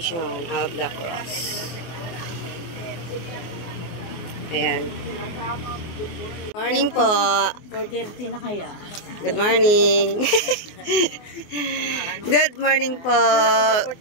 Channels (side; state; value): right; late; 24 ms